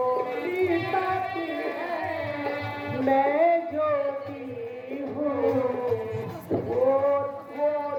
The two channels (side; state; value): both; identical; correlation 1.00